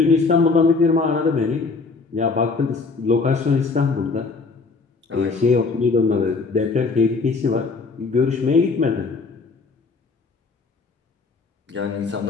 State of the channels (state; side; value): quieter; right; 4.2 dB